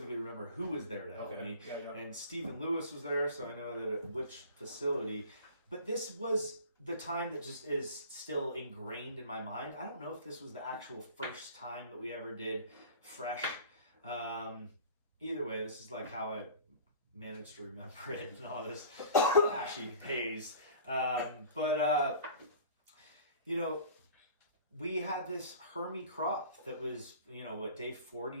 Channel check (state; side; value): inverted; both; correlation -0.42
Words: remember who was there to help me. Yeah. And Stephen Lewis was there, so I know that at which facility. But this was the time that just is still ingrained in my mind. I don't know if this was the actual first time that we ever did fresh. Either way, this is like how I managed to remember it and all this ashy haze. We had this Hermie crop that was, day